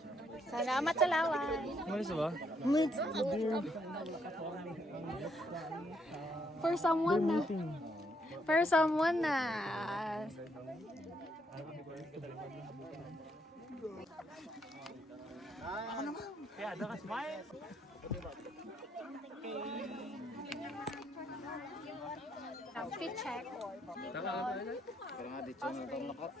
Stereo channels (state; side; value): normal; both; correlation 0.73